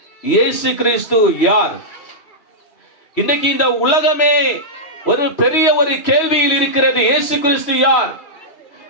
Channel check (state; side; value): late; right; 3.0 ms